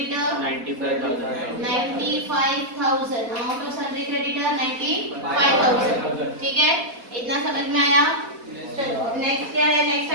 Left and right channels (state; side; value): late; left; 4.1 ms